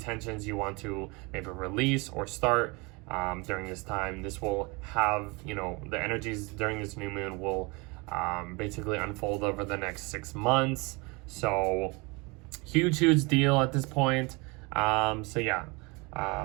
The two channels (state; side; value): quieter; left; 27.5 dB